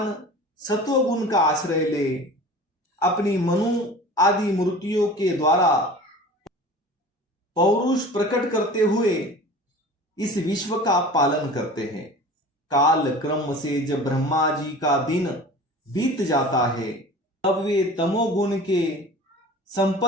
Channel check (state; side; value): normal; both; correlation 0.40